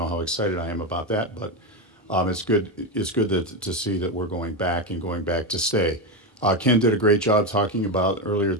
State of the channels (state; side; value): normal; both; correlation 0.12